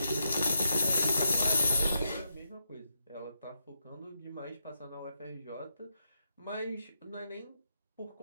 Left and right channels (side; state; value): both; inverted; correlation -0.82